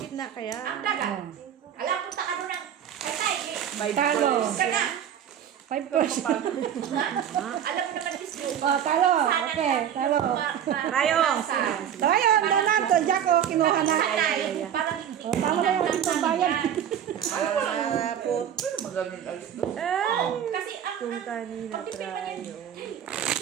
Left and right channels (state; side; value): quieter; left; 9.4 dB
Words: kaya? ang dagat. Alam ko sa ano ng tide. By Talo. Ka na. 5 person. Alam mo naman, Miss Yu. Oh, talo. Okay, talo. Trayo. Tayo, Donato, Jack, oh, kinuha na. Parang Oh, talo na yung itong bayan. kasi ang Kung kanina, trayo.